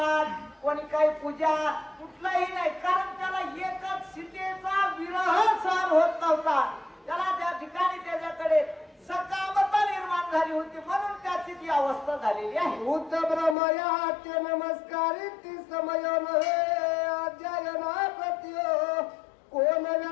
कोणी काही पूजा कुठलाही नाही, कारण त्याला एकच सीतेचा विरह सहन होत नव्हता। त्याला त्या ठिकाणी त्याच्याकडे सकामता निर्माण झाली होती, म्हणून त्याची ती अवस्था झालेली आहे। भूत ब्रह्मया ते नमस्कारित समयन अध्ययना प्रतियो कोण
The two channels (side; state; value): right; drops out; at 13.6 s